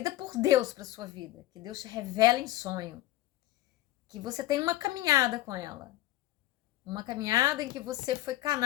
por Deus para sua vida, que Deus te revela em sonho, que você tem uma caminhada com ela. Uma caminhada em que você foi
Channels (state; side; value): quieter; right; 15.7 dB